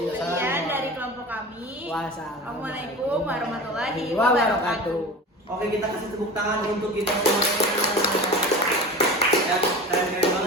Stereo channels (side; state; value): both; normal; correlation 0.33